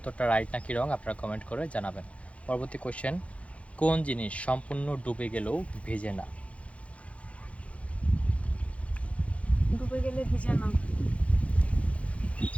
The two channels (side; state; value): right; late; 0.063 ms